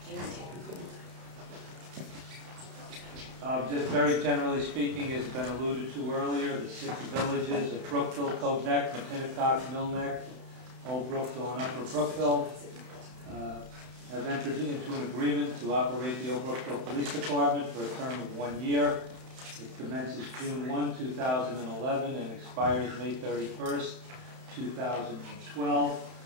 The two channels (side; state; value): left; late; 31 ms